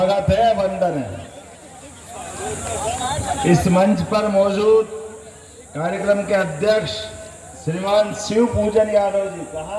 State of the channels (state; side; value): identical; both; correlation 1.00